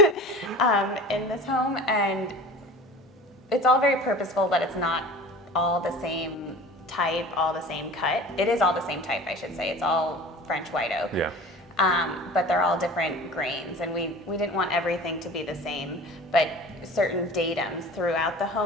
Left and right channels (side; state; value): both; normal; correlation 0.39